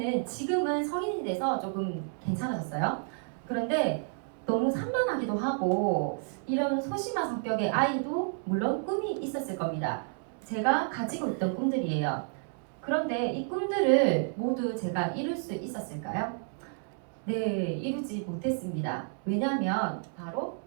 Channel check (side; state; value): left; silent; 57 dB below the other